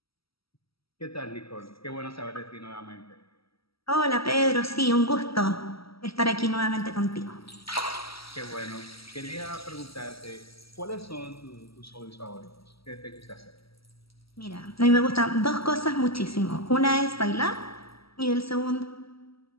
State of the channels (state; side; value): late; right; 0.75 ms